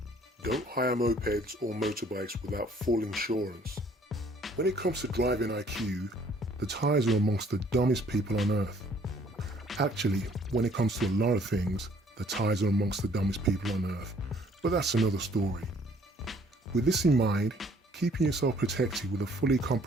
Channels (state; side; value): normal; both; correlation 0.60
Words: Don't hire mopeds or motorbikes without full insurance. When it comes to driving IQ, the Thais are amongst the dumbest people on earth. Actually, when it comes to a lot of things, the Thais are amongst the dumbest people on earth, but that's another story. With this in mind, keeping yourself protected with a fully